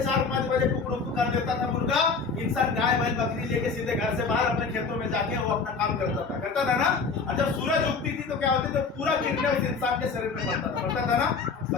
4, 5 बजे कुकड़ू कर देता था मुर्गा। इंसान गाय बैल बकरी लेके सीधे घर से बाहर अपने खेतों में जाके वो अपना काम करता था ना। और जब सूरज उगती थी तो क्या होती थी? पूरा किरणें उस इंसान के शरीर में पड़ता था ना।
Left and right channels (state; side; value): quieter; right; 4.9 dB